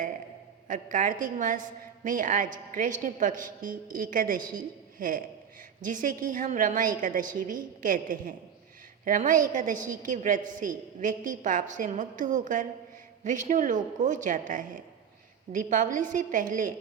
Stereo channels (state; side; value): quieter; left; 7.8 dB